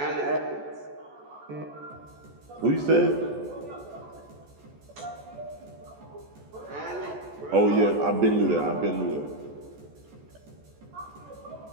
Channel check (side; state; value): left; late; 14 ms